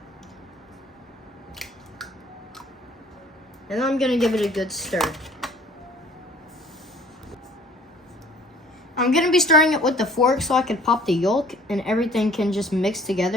And then I'm gonna give it a good stir. I'm gonna be stirring it with the fork so I can pop the yolk and everything can just mix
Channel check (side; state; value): both; normal; correlation 0.54